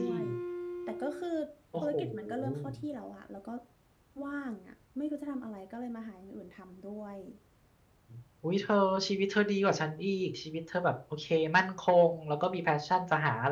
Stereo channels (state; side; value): identical; both; correlation 1.00